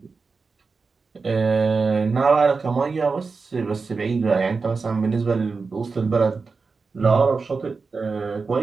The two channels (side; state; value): left; quieter; 4.5 dB